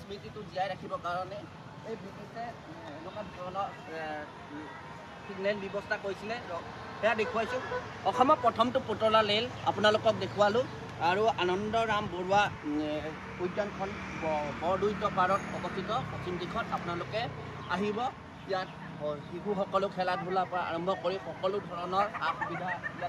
স্মৃতিটো জীয়াই ৰাখিবৰ কাৰণে এই ব্ৰিটিছে এনেকুৱা ধৰণৰ ছিগনেল ব্যৱস্থা কৰিছিলে সেয়া দেখুৱাইছোঁ অসমৰ প্ৰথমটো পুতলা ৰেল আপোনালোকক দেখুৱালোঁ আৰু আনন্দৰাম বৰুৱা উদ্যানখন বৰদৈত পাৰত অৱস্থিত পশ্চিম দিশত আপোনালোকে আহিব ইয়াত শিশুসকলো খেলা ধূলাৰ পৰা আৰম্ভ কৰি সকলো ধৰণৰ সা সুবিধা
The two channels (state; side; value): identical; both; correlation 1.00